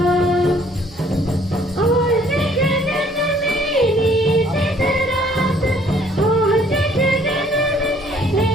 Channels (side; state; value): both; normal; correlation 0.61